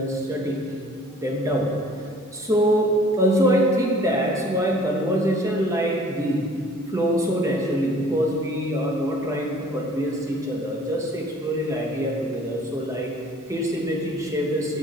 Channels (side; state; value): both; normal; correlation 0.52